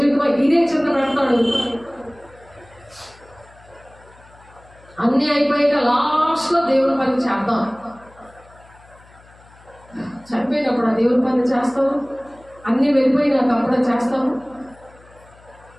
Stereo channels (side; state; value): left; noise; hum, 26 dB below the sound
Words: ఇదే చింత పెడతాడు. అన్నీ అయిపోయాక లాస్ట్లో దేవుని పని చేద్దాం. చనిపోయినప్పుడు ఆ దేవుని పని చేస్తాము. అన్నీ వెళ్ళిపోయినాక అప్పుడే చేస్తాము.